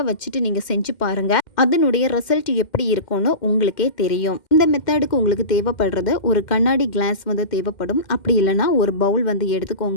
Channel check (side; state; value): right; late; 2.1 ms